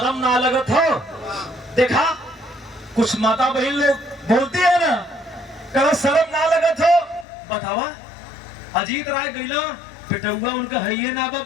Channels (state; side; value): drops out; right; at 7.2 s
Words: ना लगत हो? देखा कुछ माता बहन लोग बोलती है ना, कहा शर्म ना लगत हो? बतावा अजीत राय गईला पिटुआ उनका है ना